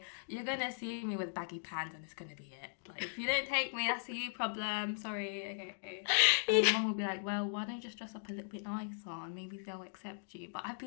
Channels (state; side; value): silent; right; digital silence